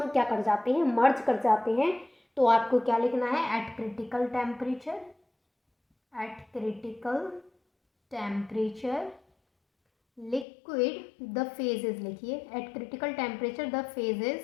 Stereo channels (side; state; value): right; drops out; at 10.5 s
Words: क्या कर जाते हैं, मर्ज कर जाते हैं। तो आपको क्या लिखना है, at critical temperature liquid the phases, लिखिए at critical temperature the